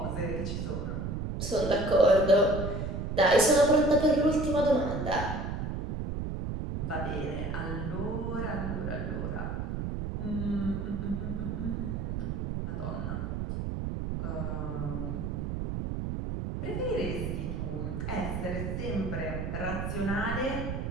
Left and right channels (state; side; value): noise; right; rumble, 3 dB below the sound